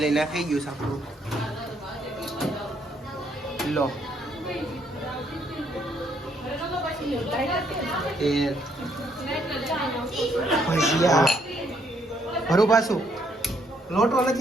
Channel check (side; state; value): both; normal; correlation 0.71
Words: નાખી ગયું સાપડું. લો ભજીયા ભરું પાછું. લોટો